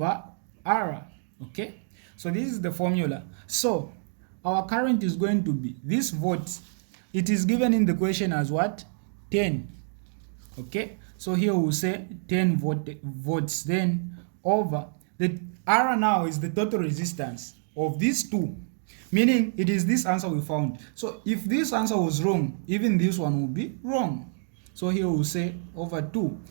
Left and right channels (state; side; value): silent; left; digital silence